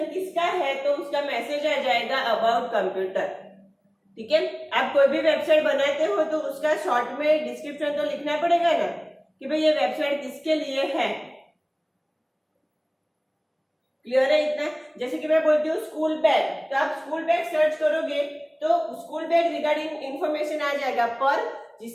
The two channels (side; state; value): both; identical; correlation 1.00